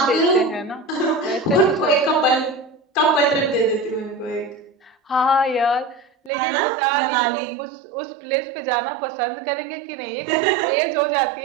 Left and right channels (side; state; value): left; drops out; at 6.3 s